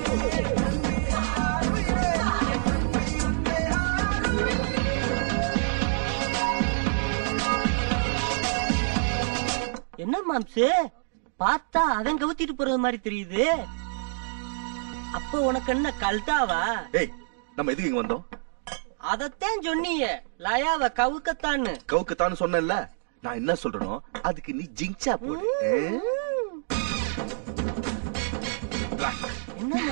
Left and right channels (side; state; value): left; silent; digital silence